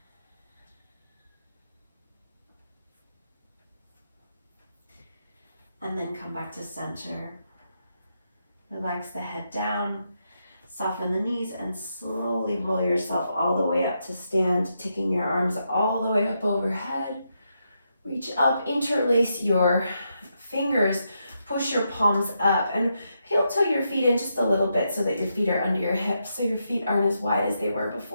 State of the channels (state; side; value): inverted; both; correlation -0.82